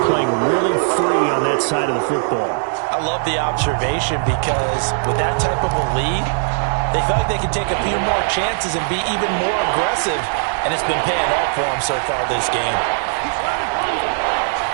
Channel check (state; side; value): silent; left; digital silence